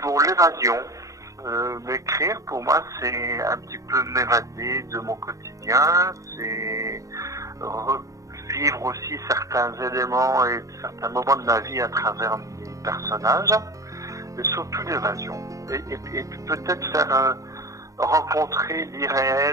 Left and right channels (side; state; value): left; late; 0.16 ms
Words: Pour l'évasion, m'écrire, pour moi, c'est un petit peu m'évader de mon quotidien, c'est revivre aussi certains éléments et certains moments de ma vie à travers mes personnages, et surtout l'évasion. Et peut-être faire rencontrer